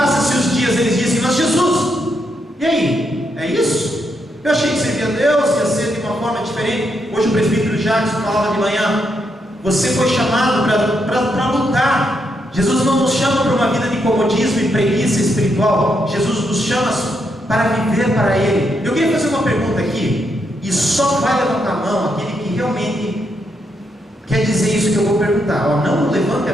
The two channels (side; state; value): both; normal; correlation 0.79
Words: os dias, eles dizem: mas Jesus, e aí? É isso? Eu achei que servia a Deus, ia ser de uma forma diferente. Hoje o presbítero Jackson falava de manhã: você foi chamado para lutar. Jesus não nos chama para uma vida de comodismo e preguiça espiritual. Jesus nos chama para viver para Ele. Eu queria fazer uma pergunta aqui, e só vai levantar a mão aquele que realmente quer dizer isso que eu vou perguntar. Não levante a